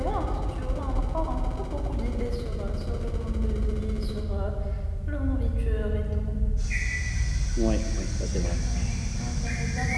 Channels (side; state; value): both; identical; correlation 1.00